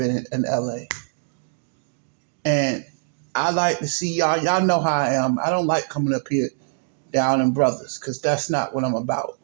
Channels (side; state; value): left; silent; digital silence